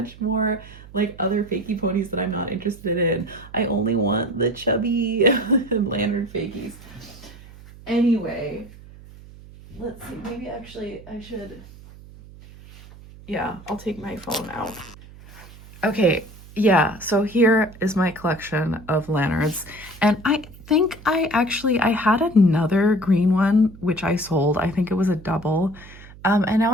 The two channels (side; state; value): right; noise; hum, 19 dB below the sound